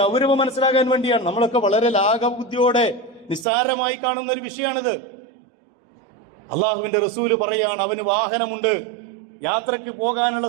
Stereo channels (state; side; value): drops out; left; at 3.5 s